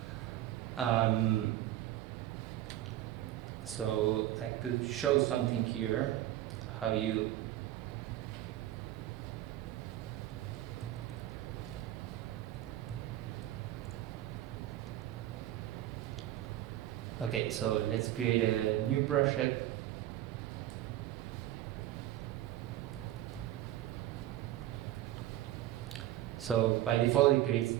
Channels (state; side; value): quieter; left; 13.9 dB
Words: So I could show something here, how you okay, so let's create a new project. So by default,